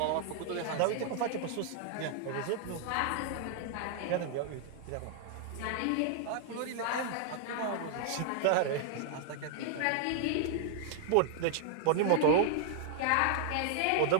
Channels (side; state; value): both; different; correlation -0.01